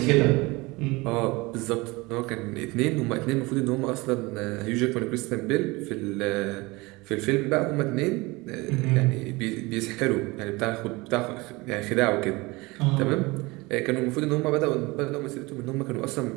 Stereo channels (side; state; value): left; quieter; 23.4 dB